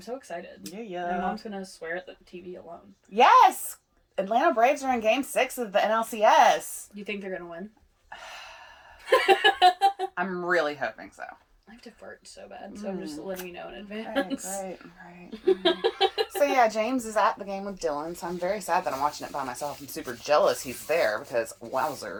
excited. Yeah. My mom's going to swear at the TV alone. Yes! Atlanta Braves are in Game 6 of the NLCS. You think they're going to win? I'm really hoping so. I have to fart so bad, so I'm just letting you know in advance. Right. So yeah, James is at the game with Dylan, so I'm very sad that I'm watching it by myself. I'm super jealous he's there because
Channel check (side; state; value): both; identical; correlation 1.00